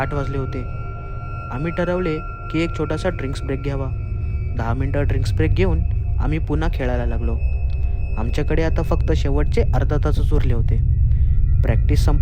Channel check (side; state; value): both; identical; correlation 1.00